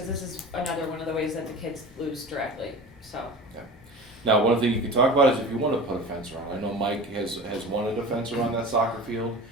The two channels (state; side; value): normal; both; correlation 0.35